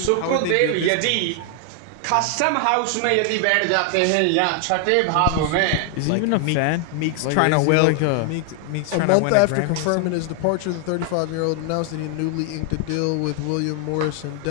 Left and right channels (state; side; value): different; both; correlation 0.00